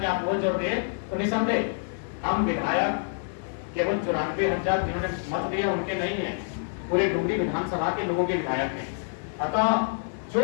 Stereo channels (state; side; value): silent; right; 60 dB below the other